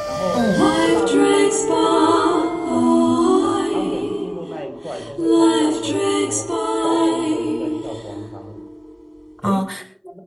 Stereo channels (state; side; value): identical; both; correlation 1.00